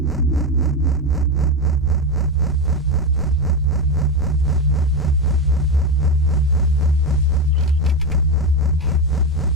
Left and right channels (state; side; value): normal; both; correlation 0.13